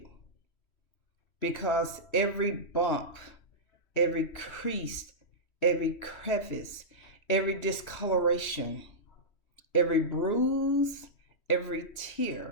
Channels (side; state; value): right; late; 3.1 ms